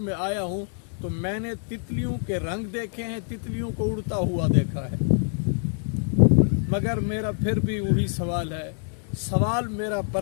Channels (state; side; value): silent; right; 61 dB below the other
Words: आया हूँ, तो मैंने तितलियों के रंग देखे हैं, तितलियों को उड़ता हुआ देखा है। मगर मेरा फिर भी वही सवाल है, सवाल मेरा